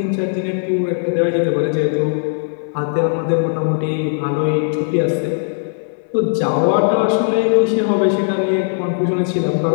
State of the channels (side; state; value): right; silent; 67 dB below the other